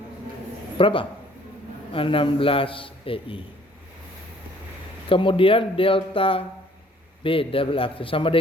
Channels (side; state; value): both; normal; correlation 0.59